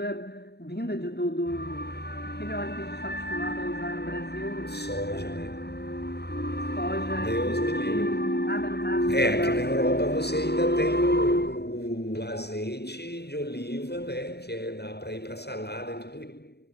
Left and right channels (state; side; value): late; right; 0.48 ms